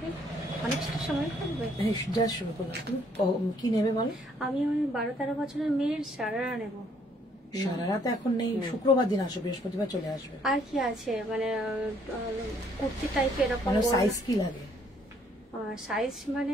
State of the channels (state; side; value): normal; both; correlation 0.66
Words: অনেকটা সময় থাকবে। যা শুরু করলাম। তুমি কি নেবে বলো? আমি ওই 12-13 বছরের মেয়ের সারারা নেব। সারারা তো এখন নেই, শুক্রবার দিন আসবে, বৃহস্পতিবার চলে আসবে। আর কি আছে মানে কুর্তি টাইপের এরকম? মানে সাইজ কি লাগে? সাইজ